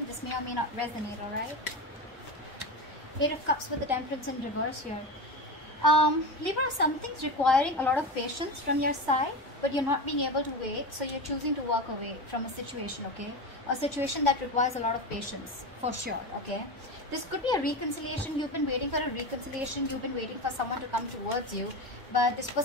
This may or may not resonate, alright? Eight of Cups with the Temperance in reverse here. Libra, something's requiring a lot of patience from your side, but you're not being able to wait, so you're choosing to walk away from a situation, okay? A situation that requires a lot of patience, for sure, okay? This could be a reconciliation. You've been waiting for a reconciliation. You've been waiting for someone to come towards you, but this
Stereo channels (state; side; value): normal; both; correlation 0.22